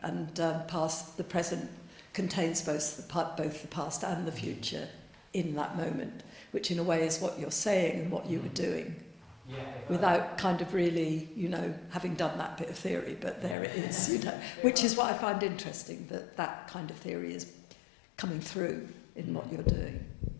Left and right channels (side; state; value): right; drops out; at 13.6 s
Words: and the present contains both the past and the future in that moment, which in a way is what you're saying and what you were doing, without kind of really, having done that bit of theory, but there it is, which is what I find interesting, that kind of theory is coming through in what you're doing.